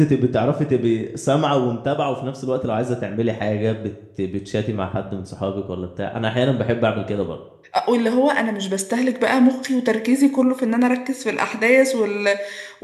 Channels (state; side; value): identical; both; correlation 1.00